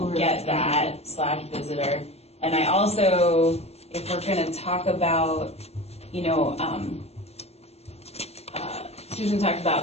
get that, / visitor. And I also, if we're going to talk about, you know, Susan talked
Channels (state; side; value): late; right; 0.30 ms